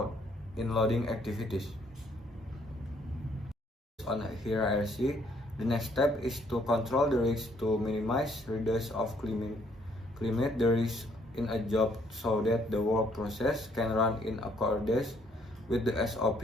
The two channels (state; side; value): normal; both; correlation 0.67